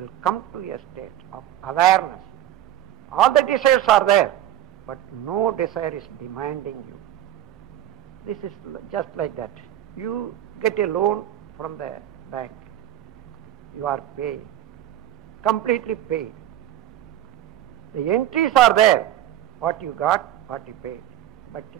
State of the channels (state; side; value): quieter; left; 12.3 dB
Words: will come to a state of awareness. All the desires are there, but no desire is demanding you. This is just like that. You get a loan from the bank. You are paying, completely paid. The entries are there, what you got, what you paid. But